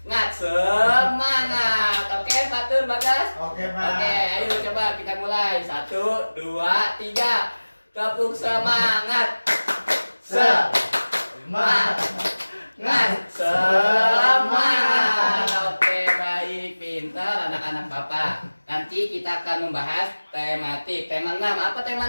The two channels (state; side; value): inverted; both; correlation -1.00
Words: Oke, Fatur, Bagas. Oke Pak. Oke, ayo coba kita mulai. 1, 2, 3. Tepuk semangat. Semangat. Semangat. Oke, baik, pintar anak-anak Bapak. Nanti kita akan membahas tematik. Tema 6. Apa